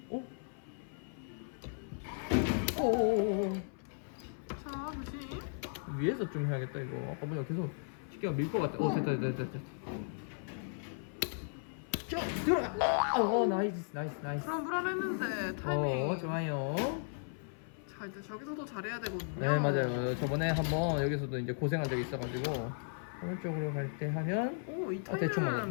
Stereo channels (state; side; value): silent; right; 54 dB below the other